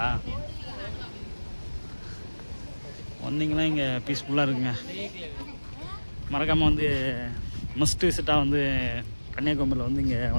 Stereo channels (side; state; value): both; inverted; correlation -1.00